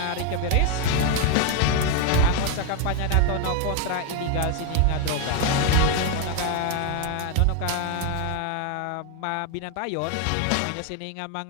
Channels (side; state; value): both; different; correlation 0.01